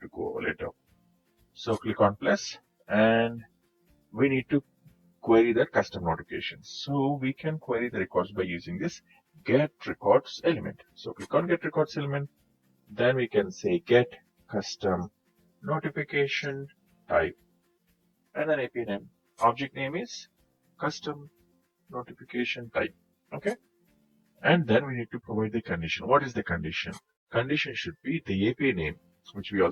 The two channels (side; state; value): both; identical; correlation 1.00